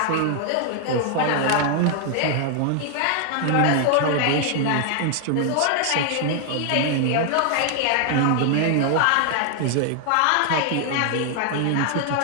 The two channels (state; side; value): different; both; correlation 0.00